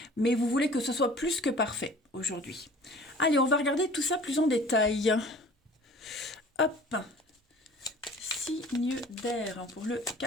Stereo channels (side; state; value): both; normal; correlation 0.46